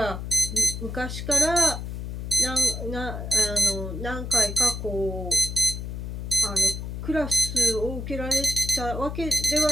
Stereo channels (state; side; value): noise; left; hum, 6 dB below the sound